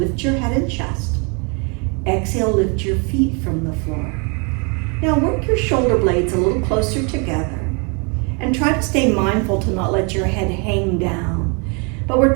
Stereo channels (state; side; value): quieter; left; 33.9 dB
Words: your head and chest. Exhale, lift your feet from the floor. Now work your shoulder blades a little closer together and try to stay mindful to not let your head hang down. But we're